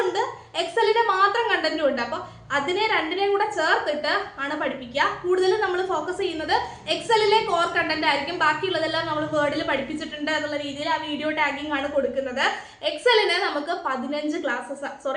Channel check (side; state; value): both; identical; correlation 1.00